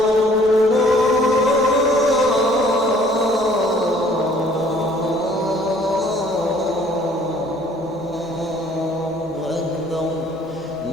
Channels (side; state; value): both; normal; correlation 0.57